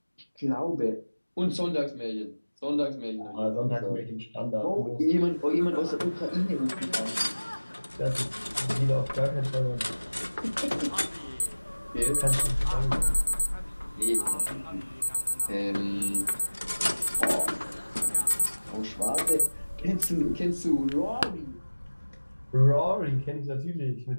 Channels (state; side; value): inverted; both; correlation -1.00